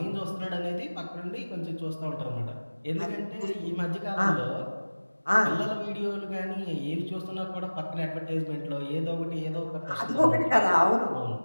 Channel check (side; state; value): both; inverted; correlation -1.00